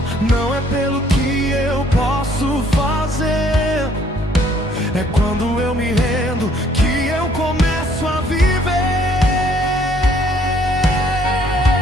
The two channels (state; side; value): normal; both; correlation 0.63